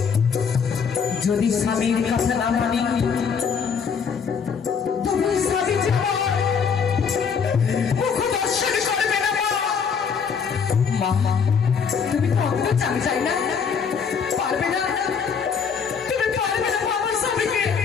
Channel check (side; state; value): right; quieter; 6.3 dB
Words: যদি স্বামীর কথা না মানি, তুমি স্বামী জীবন মুখ দর্শন করবে না মা। মা, তুমি তো অঙ্গ চাই না, পারবে না, তুমি পারবে না আমার স্বামীকে